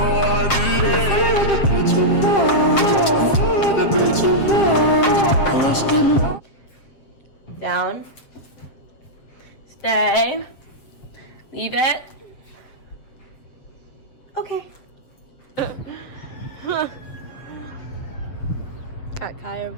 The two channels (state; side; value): late; right; 7.5 ms